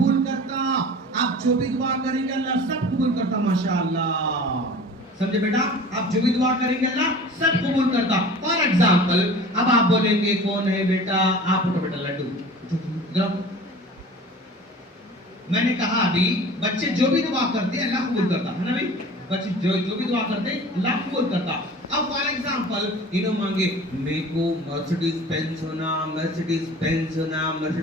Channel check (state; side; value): normal; both; correlation 0.41